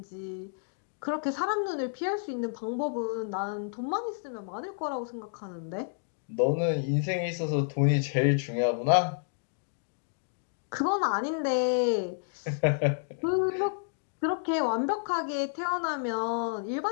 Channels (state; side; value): silent; right; digital silence